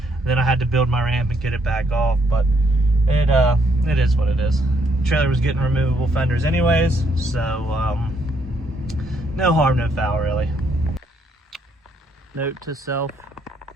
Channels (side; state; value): both; normal; correlation 0.72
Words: And then I had to build my ramp and get it back off, but it is what it is. The trailer was getting removable fenders anyways, so no harm, no foul really. Note to self,